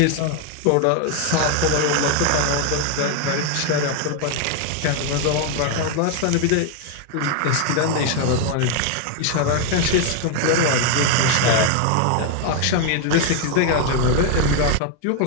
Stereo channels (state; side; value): different; both; correlation 0.01